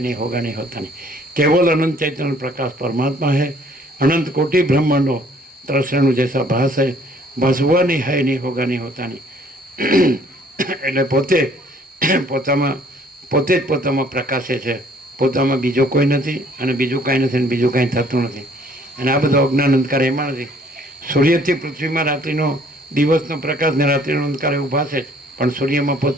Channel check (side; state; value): both; normal; correlation 0.60